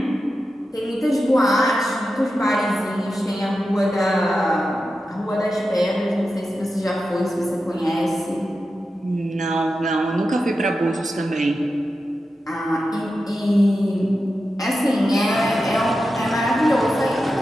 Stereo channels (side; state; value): both; normal; correlation 0.91